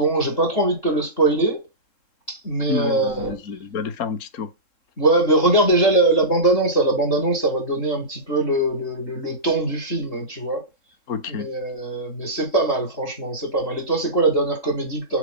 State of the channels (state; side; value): late; right; 3.7 ms